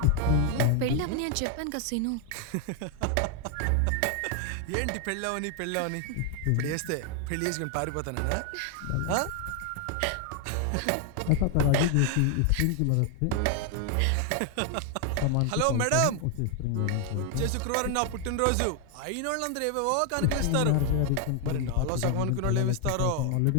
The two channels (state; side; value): different; both; correlation 0.00